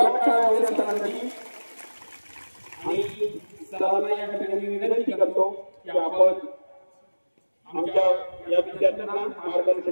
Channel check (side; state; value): both; inverted; correlation -1.00